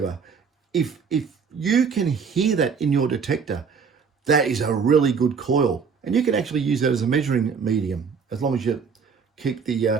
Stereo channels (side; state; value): left; quieter; 5.9 dB